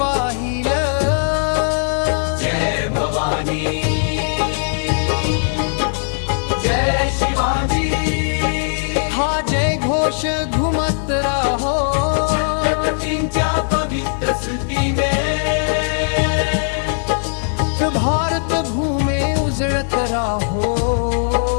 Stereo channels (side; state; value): right; silent; 67 dB below the other